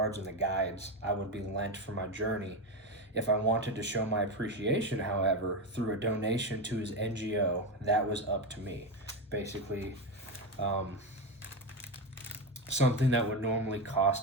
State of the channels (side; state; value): both; normal; correlation 0.14